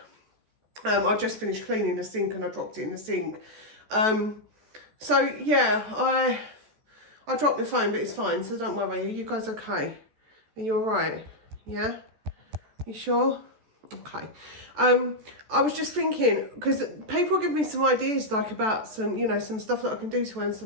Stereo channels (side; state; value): left; late; 14 ms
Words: I just finished cleaning the sink and I dropped it in the sink. So yeah, I dropped the phone, but it's fine, so don't worry. Are you guys okay? Are you all right? Yeah? You sure? Okay. I was just thinking, because people give me some ideas, like about some, you know, some stuff that I can do to earn